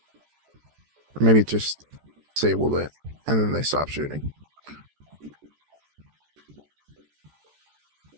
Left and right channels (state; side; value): late; left; 14 ms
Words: Maybe it just disabled it and then they stopped shooting.